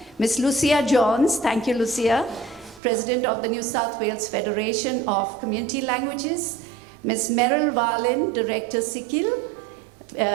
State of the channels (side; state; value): left; drops out; at 2.8 s